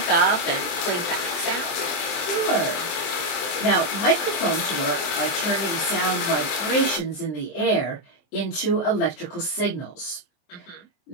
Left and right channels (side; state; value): right; late; 23 ms